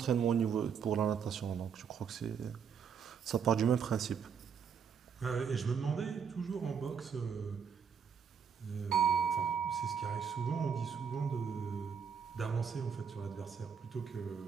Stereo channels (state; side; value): quieter; left; 6.9 dB